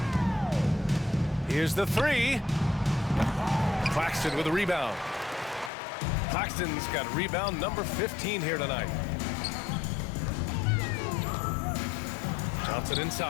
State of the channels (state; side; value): drops out; right; at 5.7 s